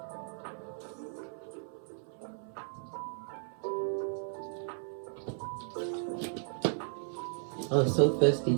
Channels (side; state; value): left; silent; 54 dB below the other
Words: Oh, so thirsty